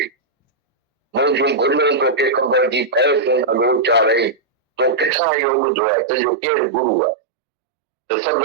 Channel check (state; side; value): drops out; left; at 5.1 s